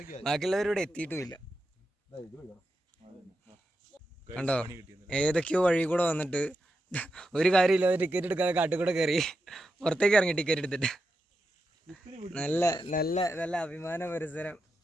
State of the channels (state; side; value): normal; both; correlation 0.88